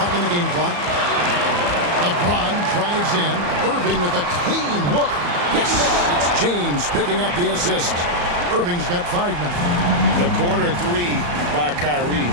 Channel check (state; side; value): late; left; 34 ms